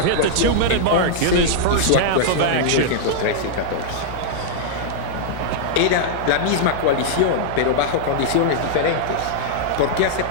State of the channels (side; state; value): both; different; correlation -0.02